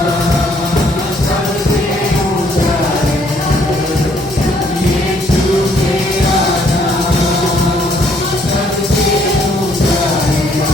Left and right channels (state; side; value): normal; both; correlation 0.66